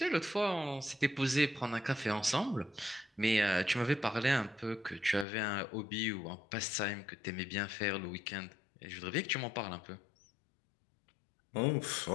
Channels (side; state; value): right; drops out; at 5.2 s